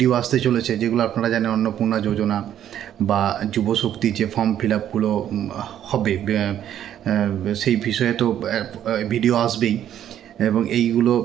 আসতে চলেছে, যেগুলো আপনারা জানেন অন্নপূর্ণা যোজনা বা যুবশক্তি যে ফর্ম ফিল আপগুলো হবে সেই বিষয়ে তো ভিডিও আসবেই, এবং এই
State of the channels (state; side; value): quieter; left; 10.7 dB